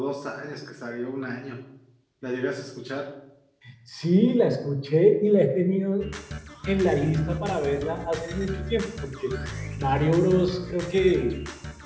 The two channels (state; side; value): identical; both; correlation 1.00